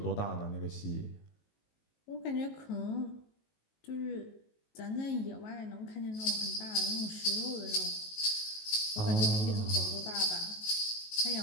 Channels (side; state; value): right; late; 19 ms